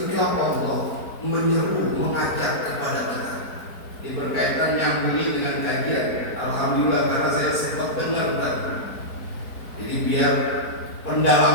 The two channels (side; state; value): right; late; 4.4 ms